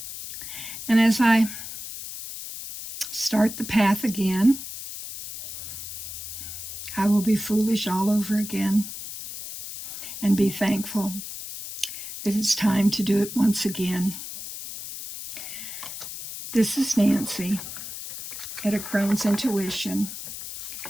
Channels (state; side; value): noise; left; hiss, 9 dB below the sound